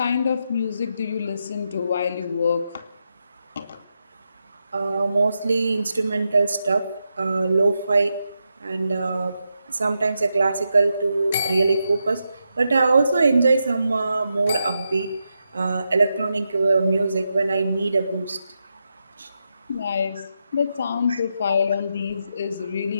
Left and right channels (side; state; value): both; inverted; correlation -0.85